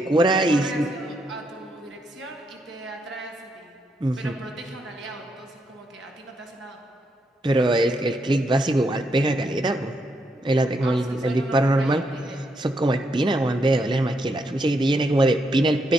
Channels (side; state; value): both; normal; correlation 0.79